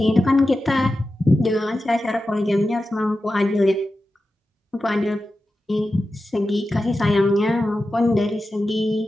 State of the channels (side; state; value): both; normal; correlation 0.93